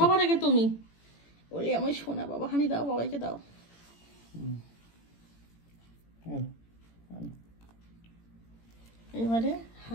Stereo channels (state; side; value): late; right; 18 ms